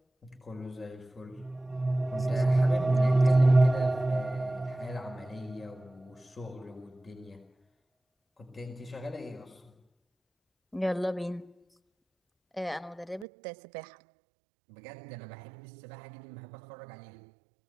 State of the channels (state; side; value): drops out; left; at 13.2 s